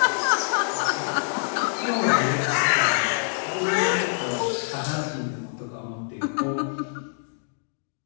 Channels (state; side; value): silent; right; digital silence